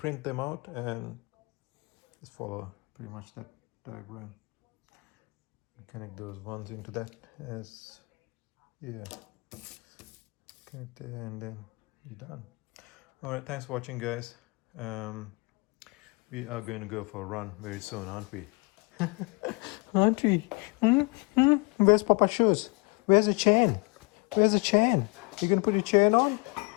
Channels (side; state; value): right; quieter; 29.6 dB